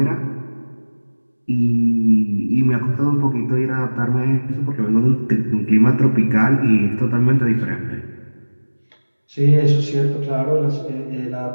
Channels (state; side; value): inverted; both; correlation -1.00